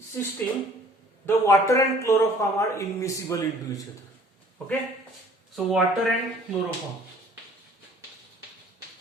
the water and chloroform are immiscible into each other. Okay, so water and chloroform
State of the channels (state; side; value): normal; both; correlation 0.53